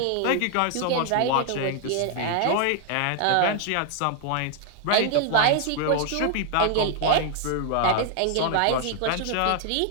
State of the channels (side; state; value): both; different; correlation 0.00